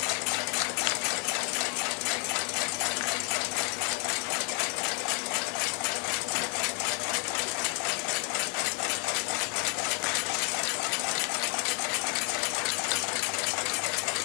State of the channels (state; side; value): quieter; right; 38.3 dB